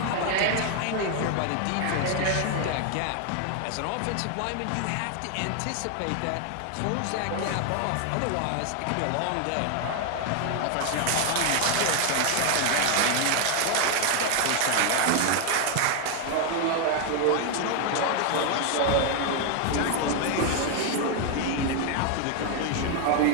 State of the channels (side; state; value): both; different; correlation 0.00